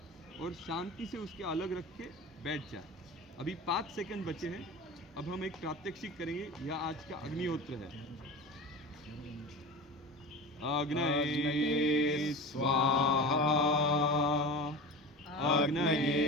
और शांति से उसके अलग रख के बैठ जाए। अभी 5 सेकंड बचे हैं। अब हम एक प्रात्यक्षिक करेंगे। यह आज का अग्निहोत्र है। अग्नये स्वाहा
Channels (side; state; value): both; normal; correlation 0.31